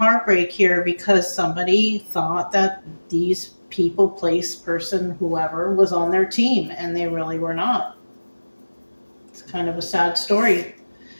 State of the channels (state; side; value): inverted; both; correlation -1.00